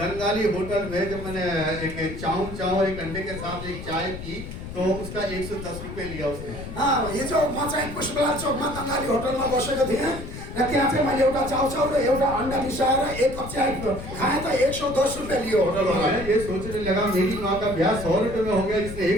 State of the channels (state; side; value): noise; left; rumble, 10 dB below the sound